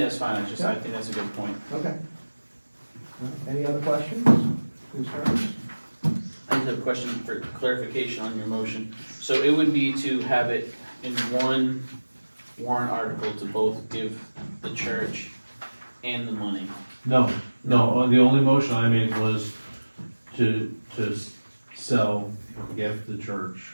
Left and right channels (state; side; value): inverted; both; correlation -1.00